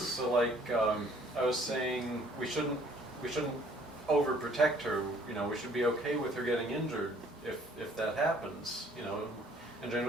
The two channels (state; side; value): normal; both; correlation 0.59